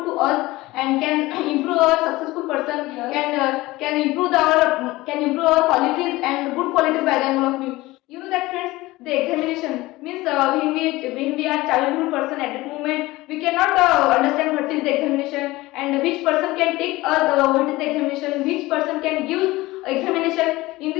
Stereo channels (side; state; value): right; quieter; 19.4 dB